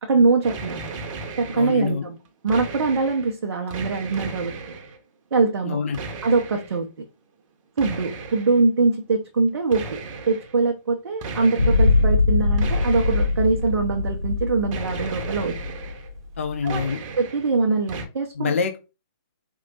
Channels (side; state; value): both; inverted; correlation -0.70